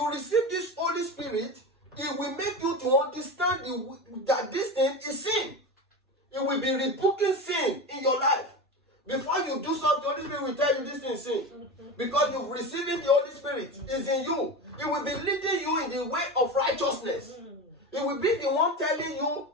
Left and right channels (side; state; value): both; normal; correlation 0.25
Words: receive this Holy Spirit, it will make you to understand that this thing is sin. It will be rebuking sin in your life. Before you do something, the Holy Spirit will tell you this thing is sin. Because you've received the Holy Spirit. It's in you. It will be leading you in the way of righteousness. It will be the one telling you